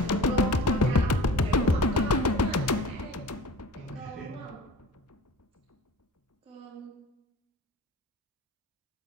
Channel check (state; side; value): normal; both; correlation 0.40